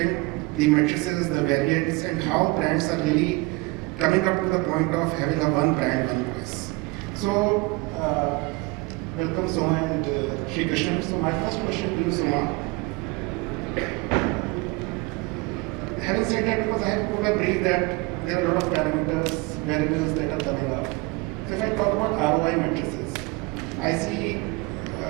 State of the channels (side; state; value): left; quieter; 24.5 dB